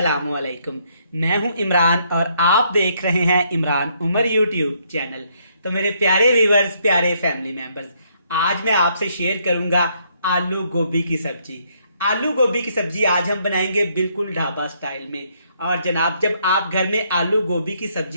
अलैकुम। मैं हूं इमरान और आप देख रहे हैं इमरान उमर यूट्यूब चैनल। तो मेरे प्यारे व्यूवर्स, प्यारे फैमिली मेंबर्स, आज मैं आपसे शेयर करूंगा आलू गोभी की सब्जी। आलू गोभी की सब्जी आज हम बनाएंगे बिल्कुल ढाबा स्टाइल में। और जनाब, जब आप घर में आलू गोभी की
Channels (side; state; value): both; inverted; correlation -0.71